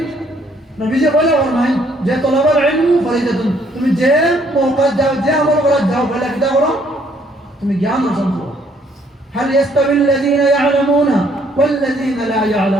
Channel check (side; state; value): both; normal; correlation 0.66